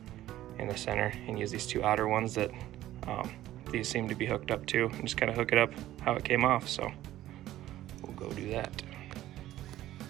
in the center and use these 2 outer ones that these seem to be hooked up to, and just kind of hook it up how it came off. So we'll go do that.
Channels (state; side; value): quieter; left; 14.1 dB